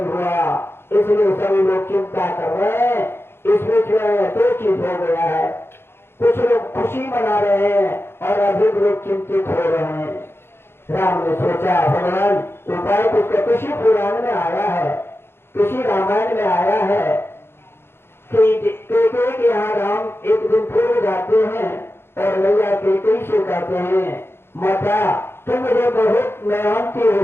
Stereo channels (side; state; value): right; late; 0.11 ms